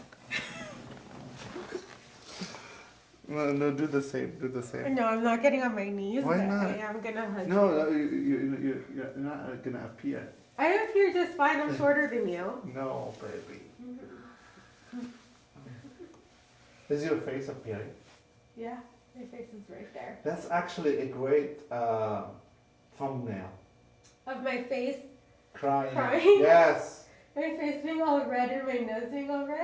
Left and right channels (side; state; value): both; identical; correlation 1.00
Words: No, do the same. Do the same. No, I'm not getting on my knees. Why but not? I am gonna hug you. No, you're not gonna appear. I appear just fine. I'm shorter than you. No, baby. Is your face appearing? Yeah. My face is right there. That's actually a great thumbnail. Of my face. Crying. Crying? Yes. My face being all red and my nose being all